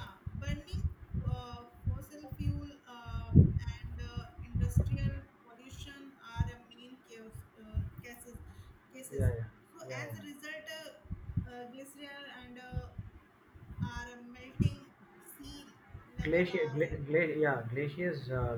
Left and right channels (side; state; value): both; identical; correlation 1.00